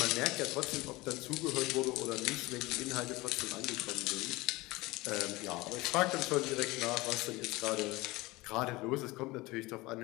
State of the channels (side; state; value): right; quieter; 21.3 dB